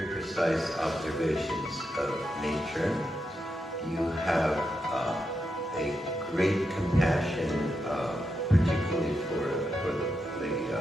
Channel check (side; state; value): both; normal; correlation 0.85